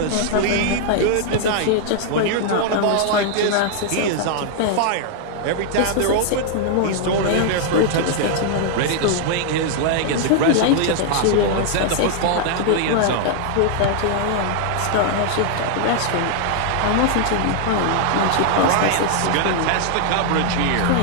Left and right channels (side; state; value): both; different; correlation 0.00